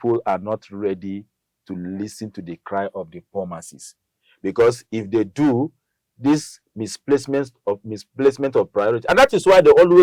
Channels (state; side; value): identical; both; correlation 1.00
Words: are not ready to listen to the cry of the poor masses, because if they do, this misplacement of priority, and that is why they